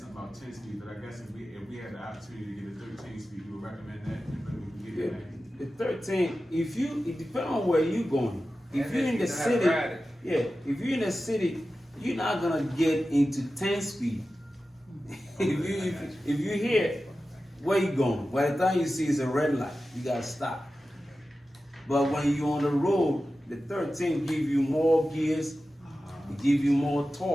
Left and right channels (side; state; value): both; normal; correlation 0.94